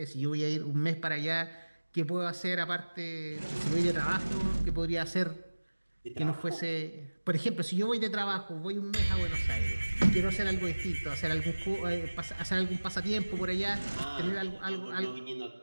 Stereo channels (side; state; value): both; inverted; correlation -1.00